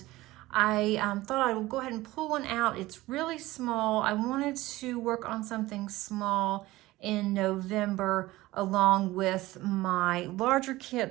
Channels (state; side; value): quieter; left; 18.3 dB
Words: I thought I would go ahead and pull one out. It's really small. I wanted to work on something small in November along with my larger